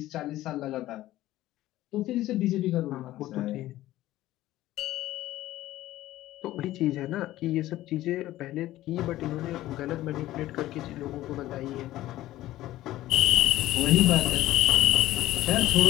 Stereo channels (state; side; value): quieter; right; 15.3 dB